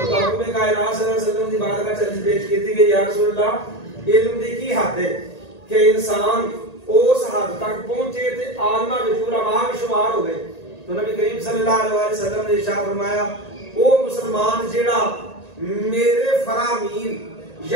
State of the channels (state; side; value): late; right; 1.9 ms